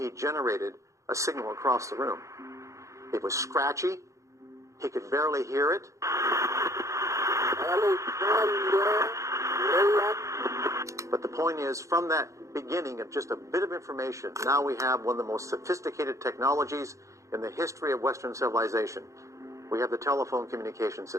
generated a signal across the room. It was scratchy. He could barely hear it. But the point is, from that beginning of just a bit of information, now we have one of the most sophisticated technologies in the history of Western civilization. We have the telephone communication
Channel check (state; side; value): late; left; 0.15 ms